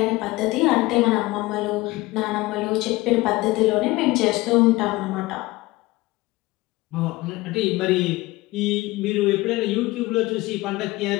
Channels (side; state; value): right; quieter; 20.3 dB